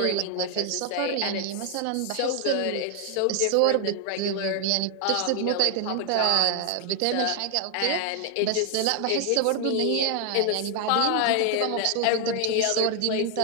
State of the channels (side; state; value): both; different; correlation 0.00